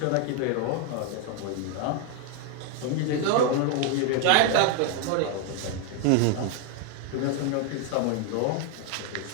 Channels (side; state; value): both; different; correlation 0.01